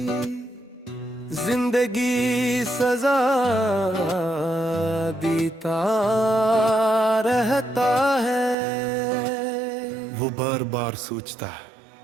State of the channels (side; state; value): left; drops out; at 8.6 s